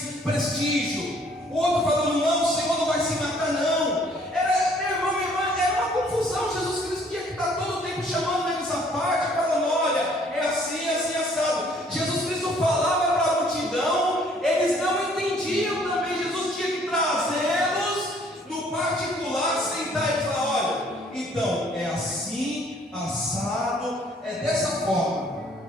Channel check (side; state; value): both; normal; correlation 0.60